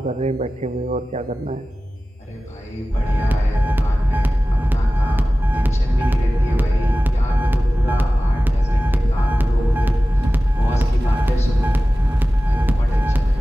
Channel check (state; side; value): normal; both; correlation 0.96